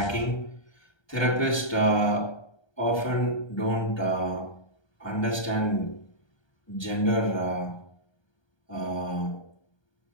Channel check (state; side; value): late; right; 1.3 ms